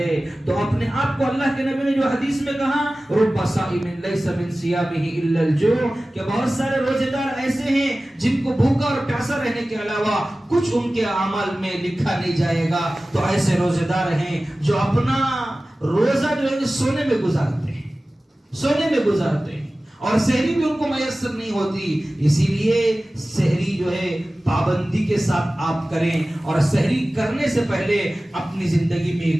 تو اپنے آپ کو اللہ کے نبی نے جو حدیث میں کہا رب صائم لیس من صیامہ الا الجوع، کہ بہت سارے روزے دار ایسے ہیں جن کو بھوکا اور پیاسا رہنے کے علاوہ کچھ ان کے اعمال میں لکھا نہیں جائے گا. تو ایسے روزے دار ہیں جو اپنا روزہ جو ہے سونے میں گزارتے ہیں، سونے میں گزارتے ہیں، اور سحری بھی ان کو میسر نہیں ہوتی. اسی لیے سحری جو ہے پابندی کے ساتھ آپ کریں، اور سحری کرنے سے پہلے اپنی زندگی میں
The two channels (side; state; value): both; normal; correlation 0.97